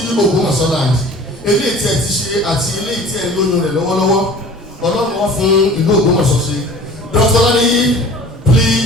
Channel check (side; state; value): both; normal; correlation 0.44